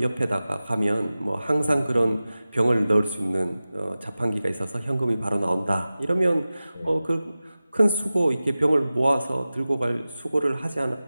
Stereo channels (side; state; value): both; inverted; correlation -0.96